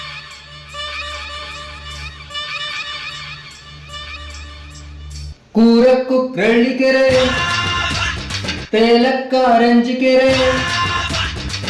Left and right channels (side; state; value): both; identical; correlation 1.00